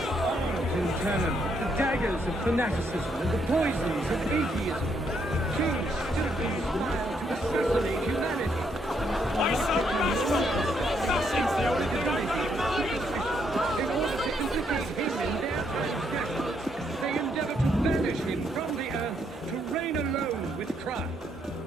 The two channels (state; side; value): normal; both; correlation 0.74